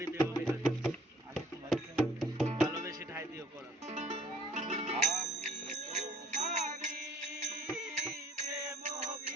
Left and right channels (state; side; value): normal; both; correlation 0.55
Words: প্রেম ভিখারি, আমি তোমার ভালোবেসে ঠাই দিও পরাণ। আমি তোমারি প্রেম